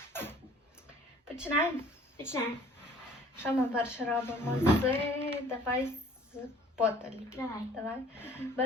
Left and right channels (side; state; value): both; normal; correlation 0.53